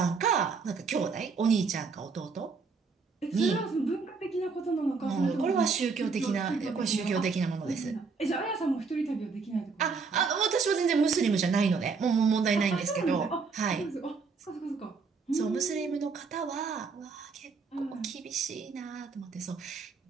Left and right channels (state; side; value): quieter; left; 4.9 dB